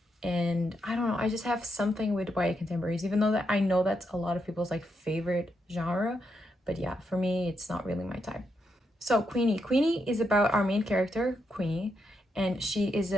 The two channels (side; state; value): both; normal; correlation 0.81